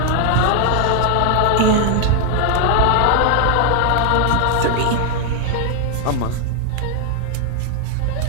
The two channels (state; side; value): different; both; correlation 0.00